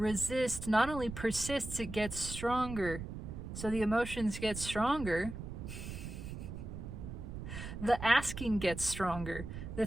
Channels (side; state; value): right; noise; rumble, 8 dB below the sound